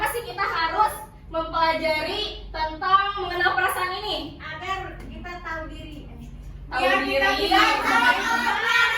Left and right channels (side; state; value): both; identical; correlation 1.00